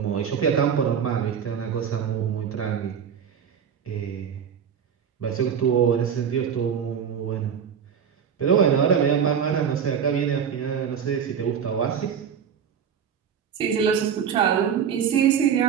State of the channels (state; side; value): quieter; left; 7.7 dB